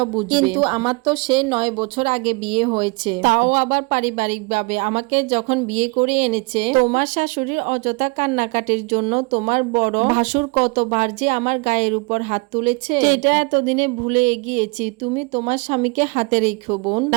বুঝবে, কিন্তু আমার তো সে 9 বছর আগে বিয়ে হয়েছে, তাও আবার পারিবারিক ভাবে। আমাকে যখন বিয়ে করে এনেছে, তোমার শাশুড়ির অযথা কান্নাকাটির জন্য তোমার বড় ভাসুর কতবার যে আমার গায়ের উপর হাত তুলেছে, সেটা এতদিনে ভুলে গিয়েছি। তুমি তোমার স্বামীকে হাতে রেখো বোন,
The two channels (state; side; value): quieter; left; 28.6 dB